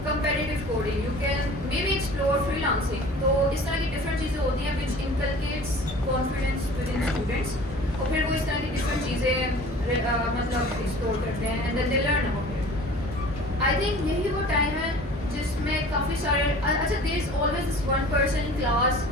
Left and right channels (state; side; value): normal; both; correlation 0.44